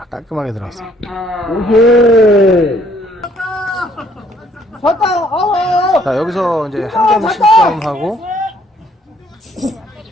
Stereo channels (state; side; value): normal; both; correlation 0.64